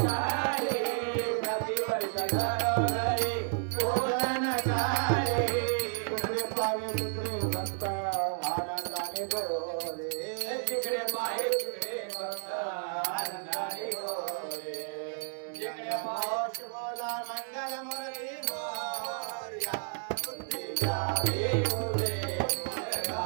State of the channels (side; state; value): left; silent; digital silence